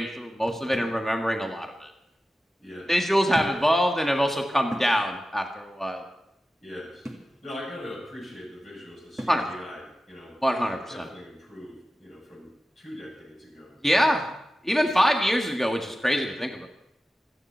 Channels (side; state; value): both; normal; correlation 0.93